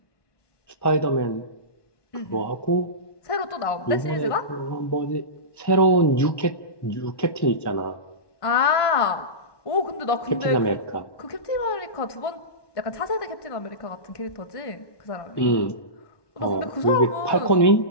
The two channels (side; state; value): right; late; 1.1 ms